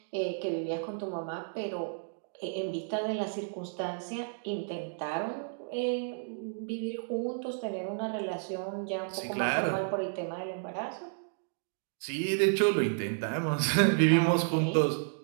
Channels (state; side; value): silent; left; digital silence